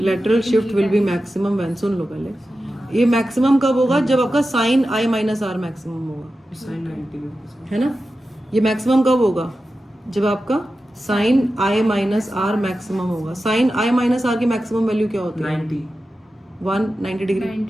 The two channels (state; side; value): normal; both; correlation 0.92